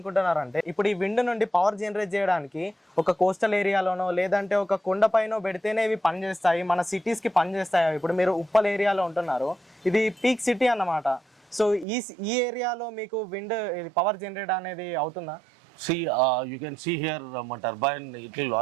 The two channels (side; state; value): left; drops out; at 11.9 s